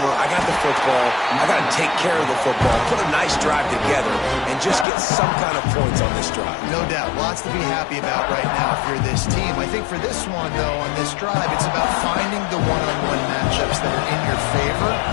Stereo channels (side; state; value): right; drops out; at 4.9 s